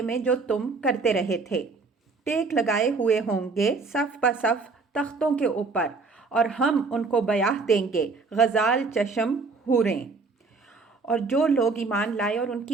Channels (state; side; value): quieter; left; 4.2 dB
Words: میں جو تم کرتے رہے تھے۔ ٹیک لگائے ہوئے ہوں گے صف بصف تختوں کے اوپر، اور ہم ان کو بیاہ دیں گے غزال چشم حوریں۔ اور جو لوگ ایمان لائے اور ان